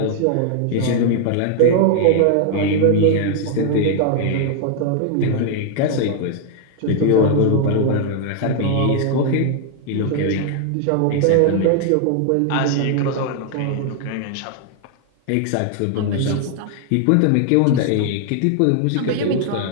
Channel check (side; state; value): both; different; correlation 0.00